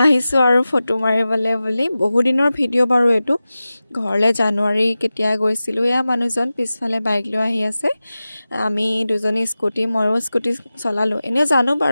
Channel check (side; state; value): both; inverted; correlation -0.95